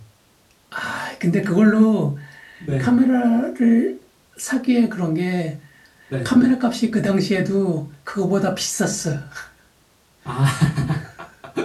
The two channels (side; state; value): both; identical; correlation 1.00